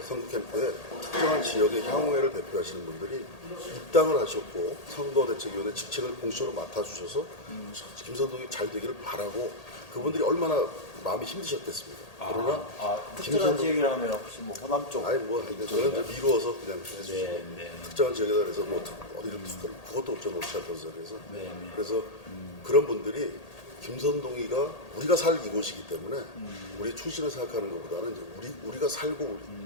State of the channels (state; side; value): late; right; 1.8 ms